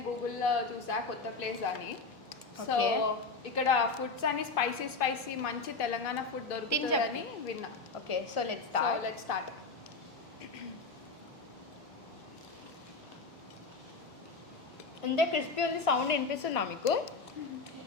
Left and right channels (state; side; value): quieter; right; 4.0 dB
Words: గూగుల్లో చూసా కొత్త ప్లేస్ అని. సో ఇక్కడ ఫుడ్స్ అని స్పైసీ మంచి తెలంగాణ ఫుడ్ దొరుకుతుందని విన్నా. Okay, so let's start. ఇంత క్రిస్పీ ఉంది. సౌండ్ వినిపిస్తుందా మీకు?